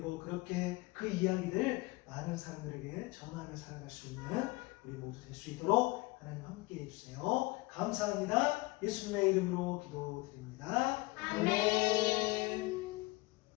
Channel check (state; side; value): quieter; right; 22.9 dB